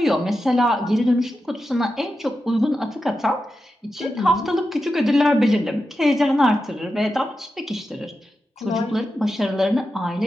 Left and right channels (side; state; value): both; normal; correlation 0.90